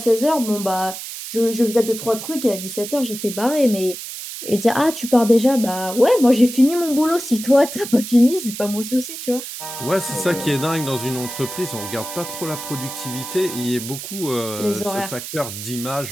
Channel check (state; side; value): noise; right; hiss, 9 dB below the sound